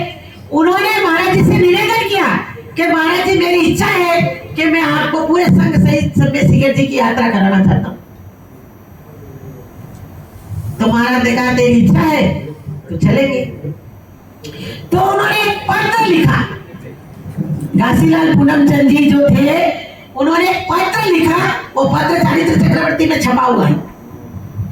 उन्होंने महाराज जी से निवेदन किया कि महाराज जी मेरी इच्छा है कि मैं आपको पूरे संघ सहित सिम्बे शिखर जी की यात्रा कराना चाहता हूं। तो महाराज ने कहा तेरी इच्छा है तो चलेंगे। तो उन्होंने एक पत्र लिखा। घासीलाल पूनमचंद जी जो थे उन्होंने एक पत्र लिखा, वो पत्र चारित्र चक्रवर्ती में छपा हुआ है।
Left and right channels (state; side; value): identical; both; correlation 1.00